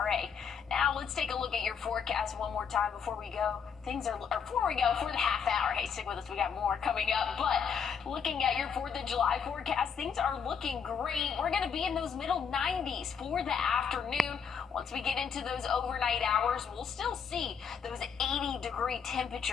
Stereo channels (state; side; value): quieter; right; 6.7 dB